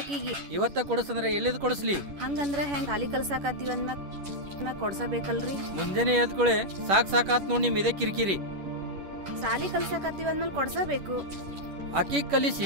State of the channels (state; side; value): late; left; 11 ms